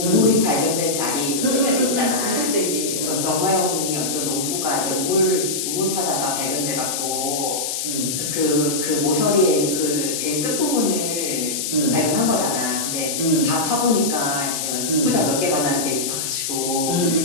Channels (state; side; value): noise; left; hiss, 2 dB below the sound